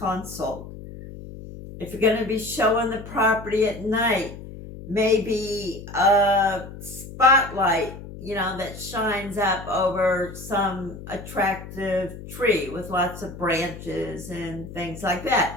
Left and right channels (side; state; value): left; noise; hum, 13 dB below the sound